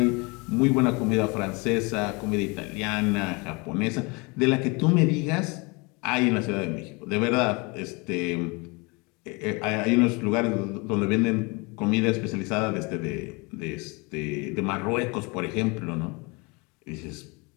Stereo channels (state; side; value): quieter; right; 28.3 dB